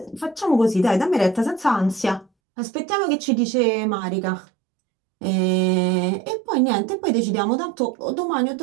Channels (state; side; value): drops out; left; at 2.2 s